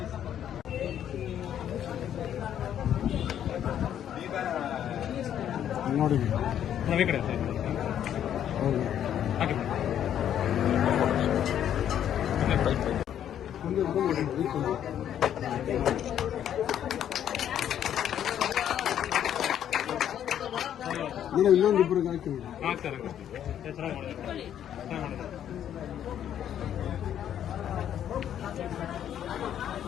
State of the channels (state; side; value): quieter; right; 10.1 dB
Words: ನೋಡಿ ಕಡೆ ನೀನು ಇನ್ನೊಂದಿಬ್ಬರಿಗೆ ಹಾಕ್ತಾರೆ.